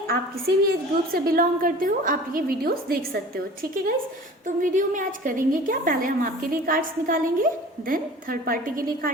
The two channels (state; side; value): normal; both; correlation 0.42